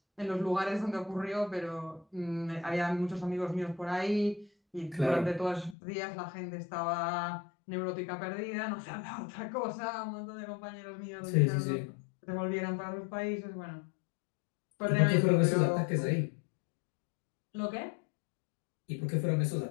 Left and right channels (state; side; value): drops out; right; at 5.8 s